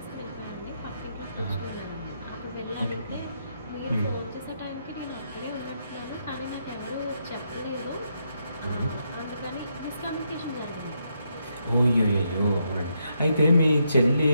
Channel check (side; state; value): both; inverted; correlation -0.79